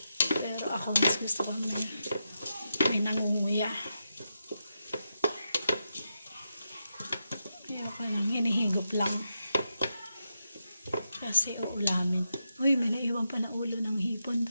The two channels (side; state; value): both; inverted; correlation -0.86